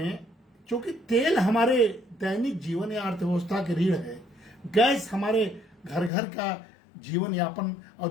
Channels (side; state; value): right; drops out; at 6.1 s